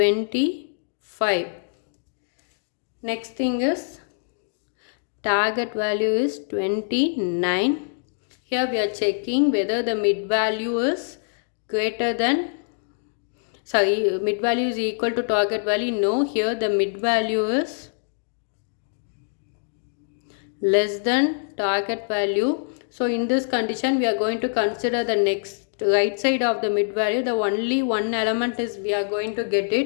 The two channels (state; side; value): silent; right; digital silence